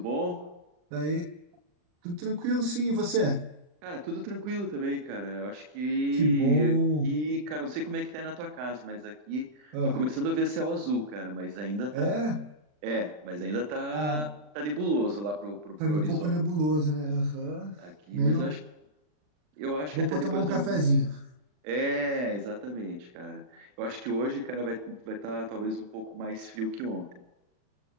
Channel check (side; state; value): left; late; 40 ms